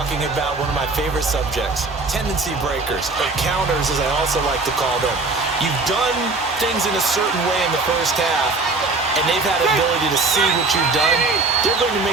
about one of my favorite subjects, tendency breakers, or counters as I also like to call them. You've done things in a certain way in the first half, and they've had the ability to see what you've done. They're going to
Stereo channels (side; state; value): left; quieter; 3.6 dB